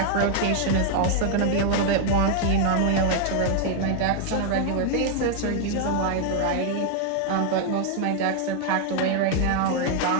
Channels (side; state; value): both; different; correlation 0.00